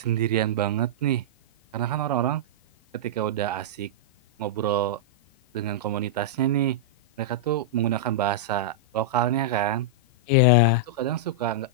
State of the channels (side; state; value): both; normal; correlation -0.09